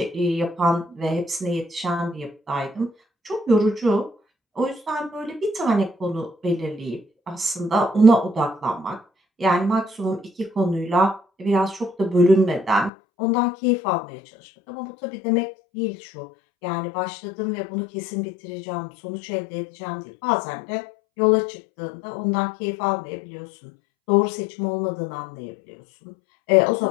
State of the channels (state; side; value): drops out; right; at 12.9 s